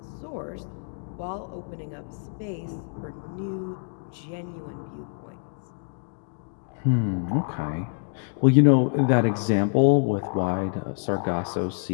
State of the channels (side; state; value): right; silent; digital silence